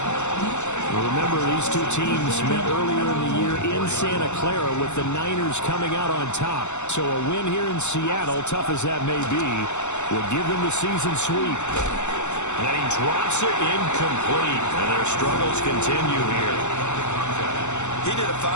Remember, these two teams met earlier in the year in Santa Clara with the Niners coming out on top. So a win here in Seattle, tough as that may be, will give them the season sweep. And he drops it incomplete, and their struggles continue here. He did a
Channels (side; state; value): right; late; 0.83 ms